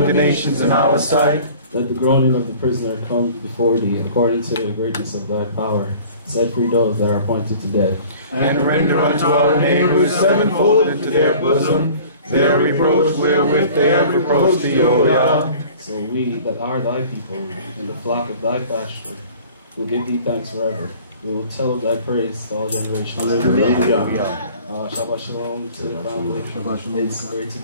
the nations in our sight. Let the groaning of the prisoner come before thee, according to the greatness of thy power. Set free those that are appointed to death. And render unto our neighbors sevenfold into their bosom their reproach wherewith they have reproached thee, O Yah. So we that are thy people, and the flock of thy pasture, will give thee thanks forever. We will tell of thy praise to all generations. Hallelujah. Shabbat Shalom to the family. It's great to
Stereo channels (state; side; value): inverted; both; correlation -0.47